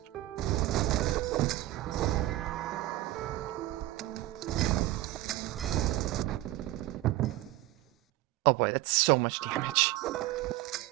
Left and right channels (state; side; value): quieter; left; 16.6 dB